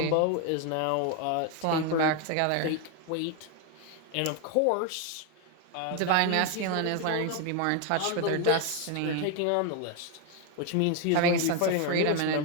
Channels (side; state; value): both; different; correlation 0.01